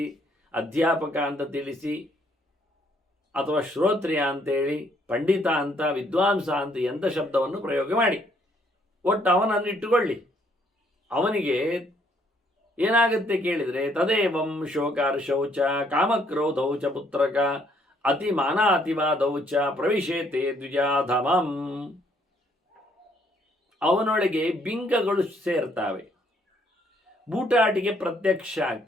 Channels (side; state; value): both; normal; correlation 0.67